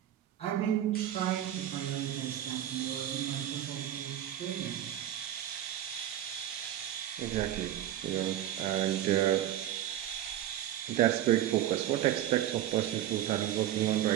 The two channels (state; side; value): quieter; left; 12.2 dB